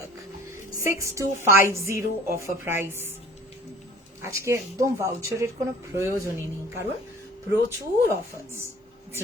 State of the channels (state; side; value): normal; both; correlation 0.48